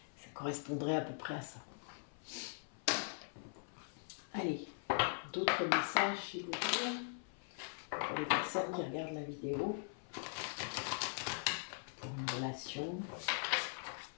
ça correspondrait à peu près à ça. Allez, d'autres messages s'il vous plaît, pour les personnes qui regardent la vidéo, pour une relation.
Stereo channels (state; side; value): silent; right; 50 dB below the other